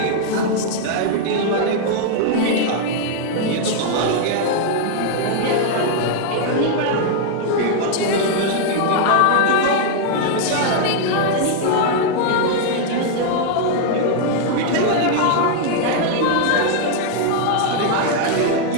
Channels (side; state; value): both; different; correlation 0.00